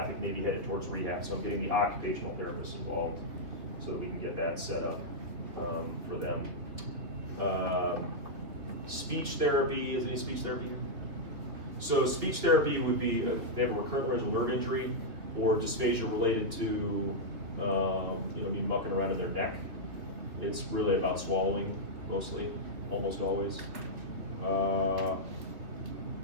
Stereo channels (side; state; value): left; late; 3.1 ms